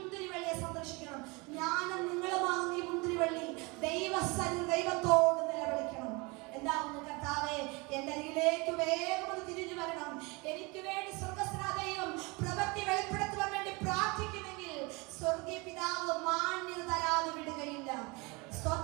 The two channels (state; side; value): quieter; left; 26.8 dB